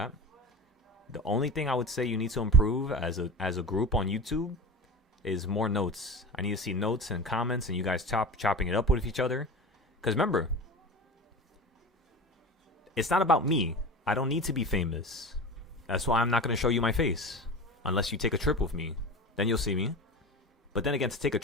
The only thing I would say you need to improve as a group on YouTube is more notes. I need to see notes and comments and you guys chopping it up with each other. Because remember, it's not about me. I don't need to be famous. That's why I'm not going to show you my face. Unless you take a trip with me. Then you'll see me. But then again, to take a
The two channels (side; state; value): both; normal; correlation 0.31